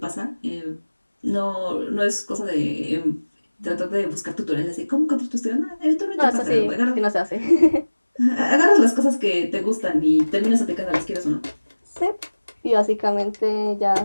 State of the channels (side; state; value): both; inverted; correlation -1.00